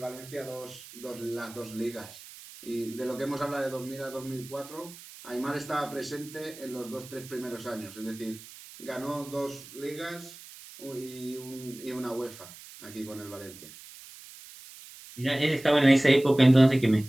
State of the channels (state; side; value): noise; right; hiss, 17 dB below the sound